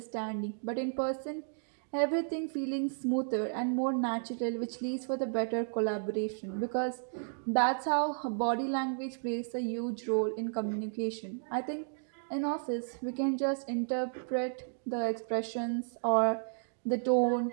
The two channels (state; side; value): silent; left; digital silence